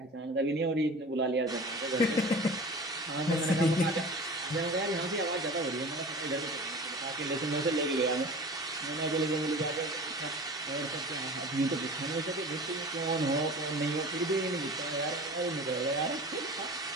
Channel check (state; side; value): normal; both; correlation 0.38